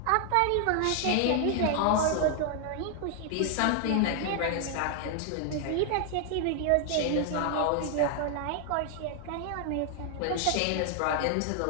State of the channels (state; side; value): different; both; correlation 0.00